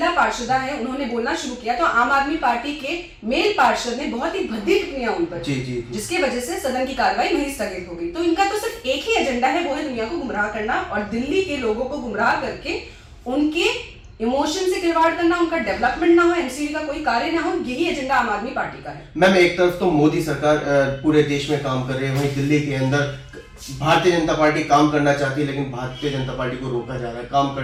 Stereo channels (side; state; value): both; identical; correlation 1.00